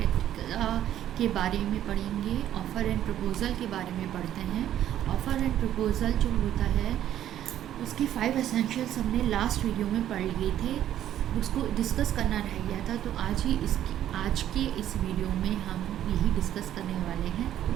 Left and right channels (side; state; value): left; quieter; 11.5 dB